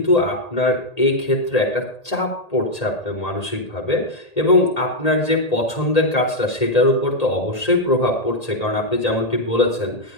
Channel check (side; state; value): right; late; 1.8 ms